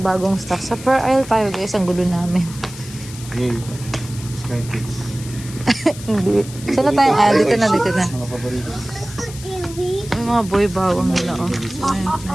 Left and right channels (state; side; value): noise; left; hiss, 15 dB below the sound